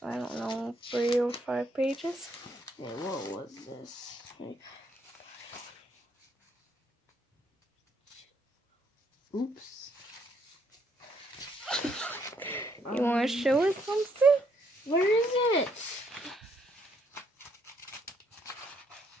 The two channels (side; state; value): both; normal; correlation 0.71